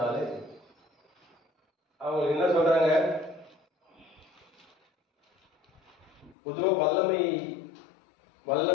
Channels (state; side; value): drops out; right; at 6.4 s